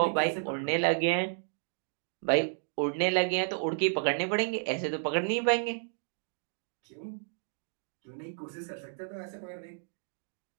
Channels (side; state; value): left; silent; digital silence